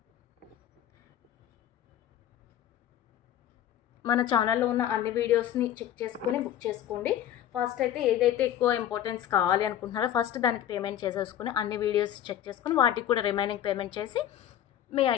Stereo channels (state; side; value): quieter; right; 11.2 dB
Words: మన ఛానల్లో ఉన్న అన్ని వీడియోస్ని చెక్ చేసుకొని బుక్ చేసుకోండి. ఫస్ట్ అయితే ఏదైతే ఎక్కువ ఇంపార్టెన్స్ కావాలి అనుకుంటున్నారో ఫస్ట్ దానికి పేమెంట్ చేసేసుకుని అన్ని వీడియోస్ చెక్ చేసుకుని వాటికి కూడా రిమైనింగ్ పేమెంట్ చేసి మీ